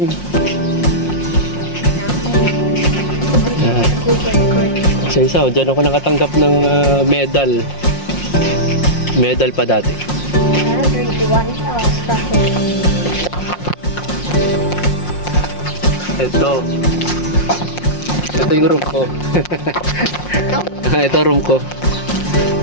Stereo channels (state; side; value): late; right; 5.6 ms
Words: Isa, dyan ako nakatanggap ng medal. Medal pa dati. Ito yung room ko. Ito room ko.